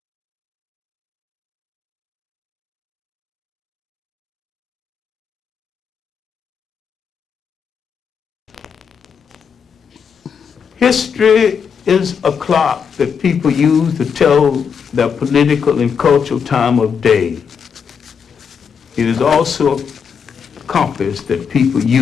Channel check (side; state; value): right; quieter; 6.7 dB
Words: History is a clock that people use to tell their political and cultural time of day. It is also a compass that people